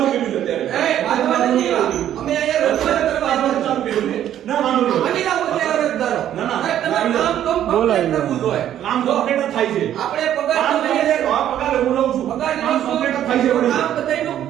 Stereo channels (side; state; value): left; quieter; 11.1 dB